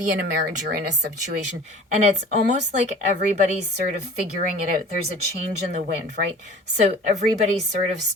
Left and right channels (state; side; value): normal; both; correlation 0.44